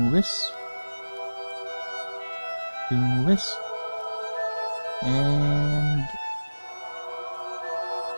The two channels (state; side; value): inverted; both; correlation -1.00